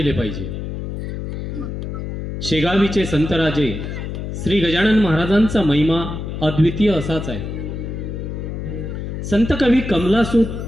पाहिजे। शेगावीचे संतराजे श्री गजानन महाराजांचा महिमा अद्वितीय असाच आहे। संत कवी कमलासूत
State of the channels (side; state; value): left; noise; hum, 6 dB below the sound